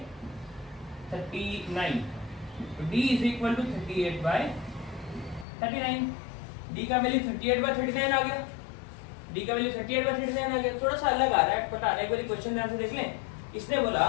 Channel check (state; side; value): drops out; right; at 5.5 s